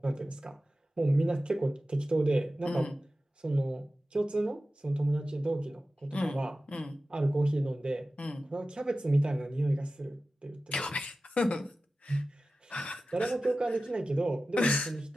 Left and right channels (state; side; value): normal; both; correlation 0.95